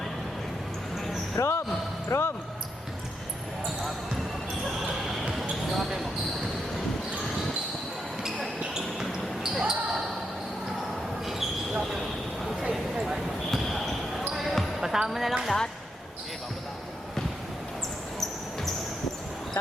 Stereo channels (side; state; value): both; normal; correlation 0.82